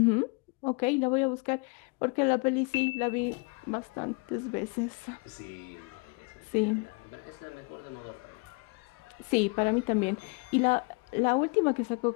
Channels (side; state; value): right; quieter; 30.5 dB